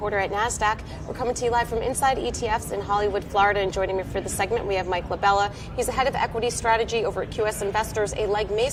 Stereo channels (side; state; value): both; identical; correlation 1.00